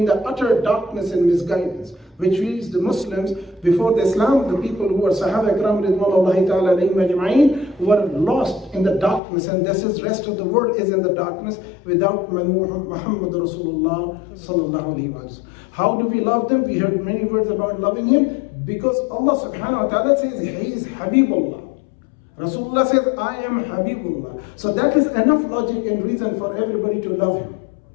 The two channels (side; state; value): right; drops out; at 9.2 s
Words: the utter darkness and misguidance, which means the Muslims before the Islam, the people who were Sahaba Ikram ridwanullahi ta'ala alayhim ajma'in, were lost in the darkness, and this is rest of the world is in the darkness without Muhammad Rasulullah sallallahu alayhi wa sallam. How do we love them? We heard many words about loving Him, because Allah subhanahu wa ta'ala says He is Habibullah. Rasulullah says, I am Habibullah. So that is enough logic and reason for everybody to love Him.